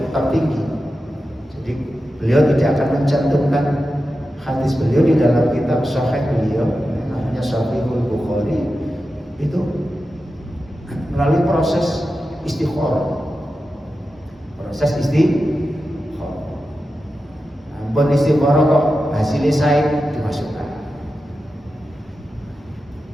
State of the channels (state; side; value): normal; both; correlation 0.91